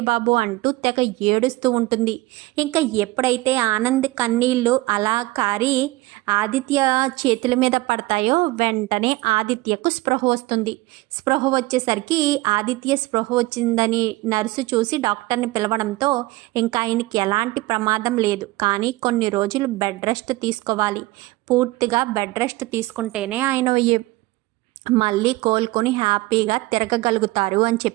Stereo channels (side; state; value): left; quieter; 19.6 dB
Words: బాబు అంటూ తెగ ఏడుస్తూ ఉంటుంది. ఇంకా ఎప్పుడైతే ఆనంద్ కన్నీళ్ళు అలా కారి ఆదిత్య చేతుల మీద పడతాయో వెంటనే ఆదిత్యకు స్పృహ వస్తుంది. స్పృహ వచ్చేసరికి ఆదిత్య స్పృహ వచ్చిందని నర్సు చూసి డాక్టర్ని పిలవడంతో ఇంకా ఆయనకి ఎలాంటి ప్రమాదం లేదు, కానీ కొన్ని రోజులు బెడ్ రెస్ట్ తీసుకోవాలి. పూర్తిగా బెడ్ రెస్ట్ తీసుకుంటేనే ఆయన మళ్ళీ కోలుకొని హ్యాపీగా తిరగగలుగుతారు అని